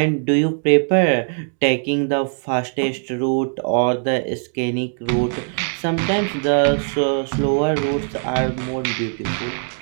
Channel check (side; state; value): left; silent; 61 dB below the other